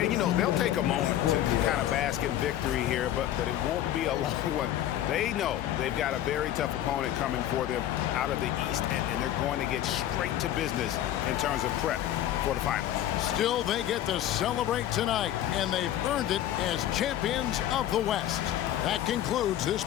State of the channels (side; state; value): right; quieter; 12.1 dB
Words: you know, they'll take a moment to kind of bask in victory here, but it won't be a long one. They know they've got a very tough opponent coming for them out of the East, and they're going to get straight to business in terms of prep for the finals. Still, they get to celebrate tonight, and they've earned it as champions of the West. That concludes this